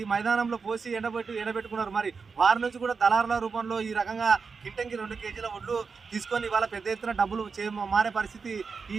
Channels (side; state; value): left; quieter; 5.1 dB